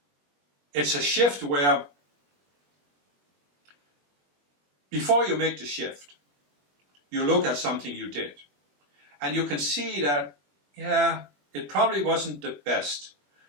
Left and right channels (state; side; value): late; left; 21 ms